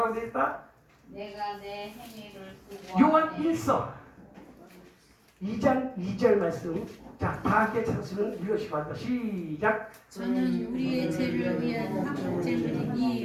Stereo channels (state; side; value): identical; both; correlation 1.00